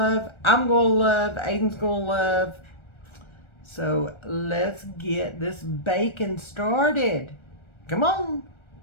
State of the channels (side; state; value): right; late; 1.3 ms